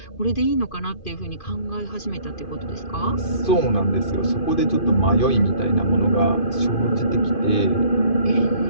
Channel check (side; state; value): right; late; 2.5 ms